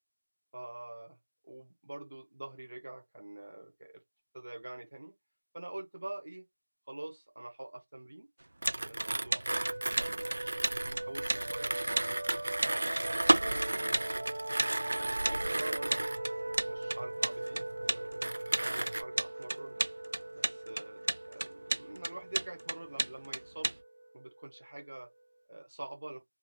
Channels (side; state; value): both; inverted; correlation -1.00